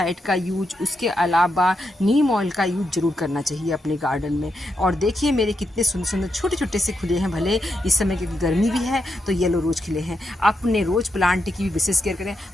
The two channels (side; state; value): both; normal; correlation 0.83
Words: का यूज, उसके अलावा नीम ऑयल का यूज जरूर करना चाहिए अपने गार्डन में। और देखिए मेरे कितने सुंदर सुंदर छोटे छोटे से खुले हैं, भले इस समय की गर्मी भी है तो येलो रोज खिले हैं। अपने रोज प्लांट की भी विशेष केयर करें